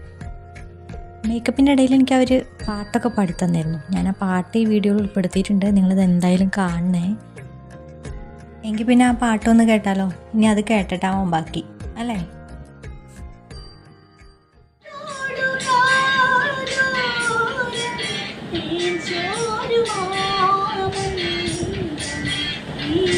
മേക്കപ്പിൻ്റെ ഇടയിൽ എനിക്ക് അവർ പാട്ടൊക്കെ പാടിത്തന്നായിരുന്നു. ഞാൻ ആ പാട്ട് ഈ വീഡിയോയിൽ ഉൾപ്പെടുത്തിയിട്ടുണ്ട്, നിങ്ങളിത് എന്തായാലും കാണണേ. എങ്കിൽ പിന്നെ ആ പാട്ടൊന്ന് കേട്ടാലോ? ഇനി അത് കേട്ടിട്ടാവും ബാക്കി, അല്ലേ?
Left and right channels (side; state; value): both; identical; correlation 1.00